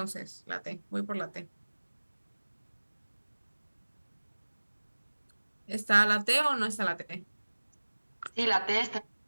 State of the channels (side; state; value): both; inverted; correlation -1.00